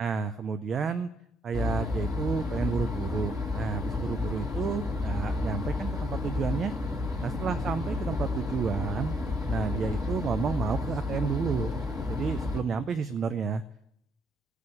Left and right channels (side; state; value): both; normal; correlation 0.72